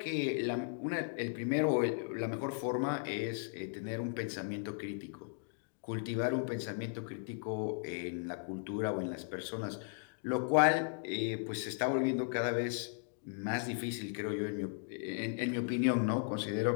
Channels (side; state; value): right; silent; digital silence